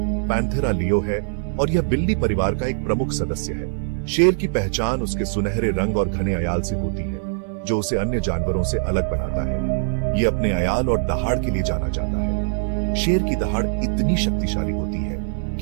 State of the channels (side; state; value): left; silent; 64 dB below the other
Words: पैंथेरा लियो है और यह बिल्ली परिवार का एक प्रमुख सदस्य है। शेर की पहचान उसके सुनहरे रंग और घने अयाल से होती है, जो उसे अन्य जानवरों से अलग बनाता है। यह अपने अयाल और दहाड़ के लिए जाना जाता है। शेर की दहाड़ इतनी शक्तिशाली होती है